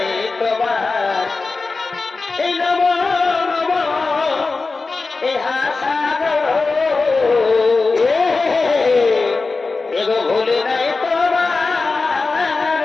তোমার এই নব নব এ হাসাগো এগো ভুলি নাই তোমার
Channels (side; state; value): right; quieter; 3.9 dB